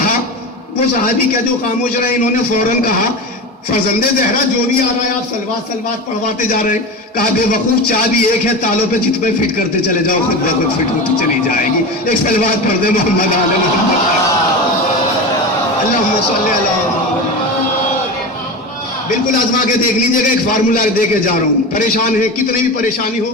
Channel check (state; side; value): normal; both; correlation 0.26